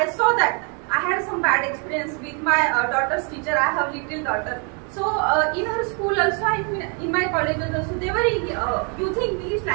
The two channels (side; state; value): left; quieter; 36.9 dB